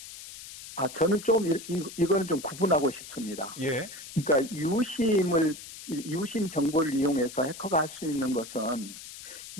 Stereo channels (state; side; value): noise; left; hiss, 14 dB below the sound